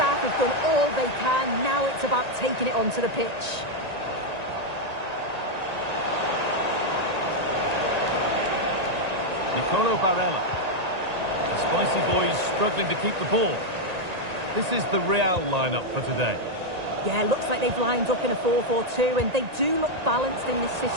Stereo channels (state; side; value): late; left; 1.9 ms